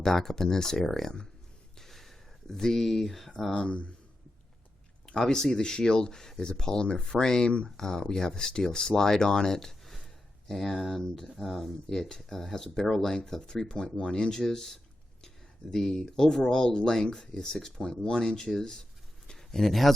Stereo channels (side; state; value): both; normal; correlation 0.89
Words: up in this area. Obviously the Shield is a polymer frame. We have a steel slide on it, and it has a barrel length of 3.1 inches. The overall length is 6.1 inches. and it